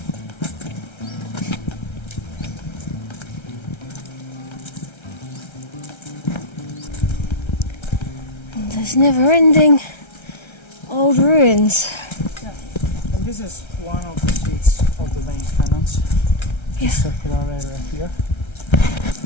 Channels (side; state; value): right; late; 1.3 ms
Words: And there's never-ending old ruins. Yeah. And this is one of the seats of the main cannons. Yeah. Circular area here.